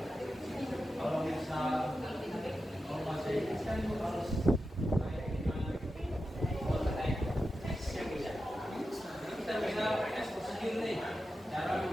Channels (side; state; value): both; normal; correlation 0.91